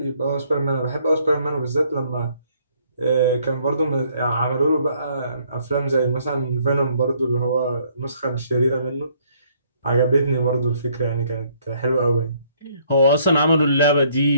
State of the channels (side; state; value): both; inverted; correlation -0.65